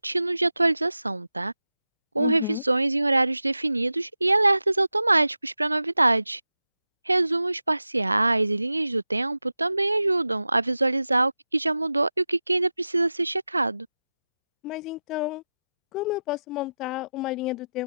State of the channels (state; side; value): inverted; both; correlation -0.93